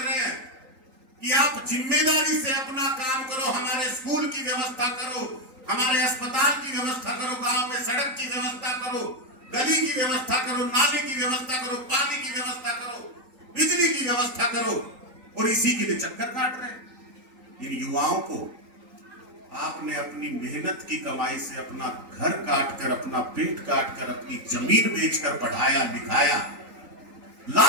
हैं कि आप जिम्मेदारी से अपना काम करो, हमारे स्कूल की व्यवस्था करो, हमारे अस्पताल की व्यवस्था करो, गांव में सड़क की व्यवस्था करो, गली की व्यवस्था करो, नाली की व्यवस्था करो, पानी की व्यवस्था करो, बिजली की व्यवस्था करो, और इसी के लिए चक्कर काट रहे हैं। इन युवाओं को आपने अपनी मेहनत की कमाई से अपना घर काटकर, अपना पेट काटकर, अपनी जमीन बेचकर पढ़ाया लिखाया,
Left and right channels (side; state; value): left; late; 3.9 ms